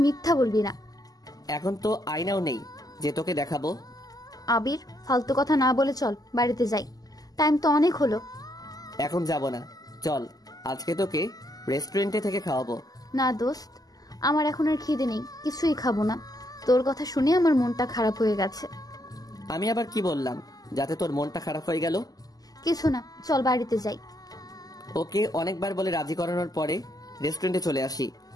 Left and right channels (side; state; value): right; late; 0.18 ms